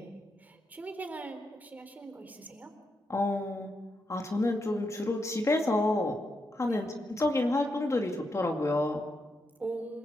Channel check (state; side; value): normal; both; correlation 0.83